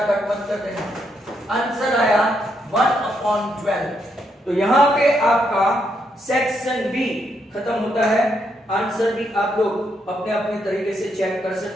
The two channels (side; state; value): both; normal; correlation 0.78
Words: कट मत कर देना। आंसर आया 1 अपॉन 12। तो यहां पे आपका सेक्शन बी खत्म होता है। आंसर भी आप लोग अपने अपने तरीके से चेक कर